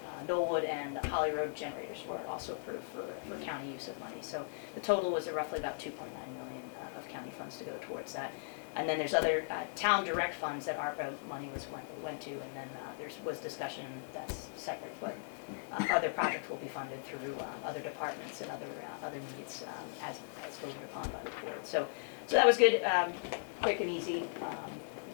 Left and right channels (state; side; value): silent; right; 53 dB below the other